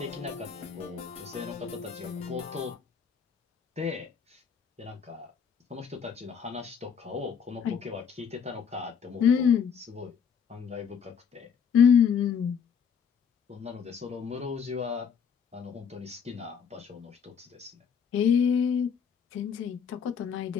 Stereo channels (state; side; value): quieter; right; 7.1 dB